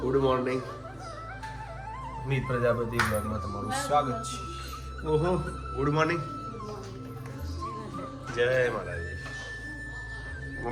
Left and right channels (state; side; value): identical; both; correlation 1.00